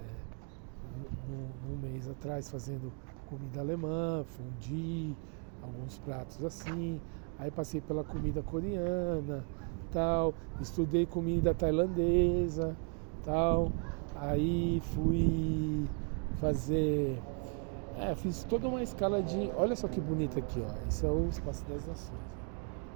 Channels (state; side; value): quieter; left; 39.3 dB